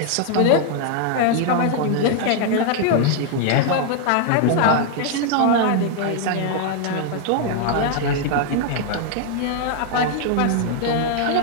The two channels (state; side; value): different; both; correlation 0.00